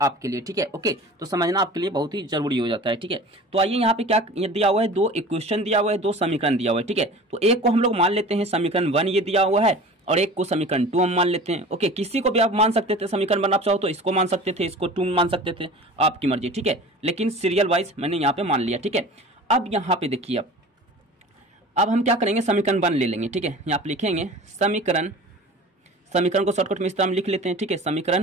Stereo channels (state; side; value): normal; both; correlation 0.40